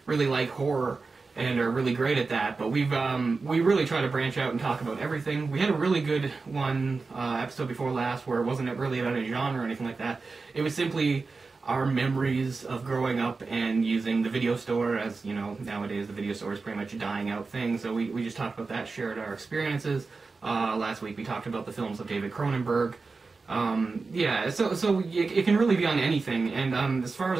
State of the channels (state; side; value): quieter; left; 4.1 dB